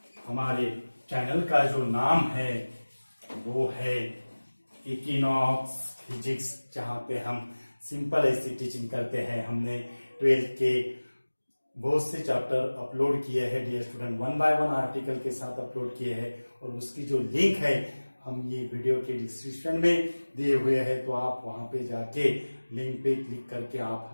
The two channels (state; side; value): inverted; both; correlation -1.00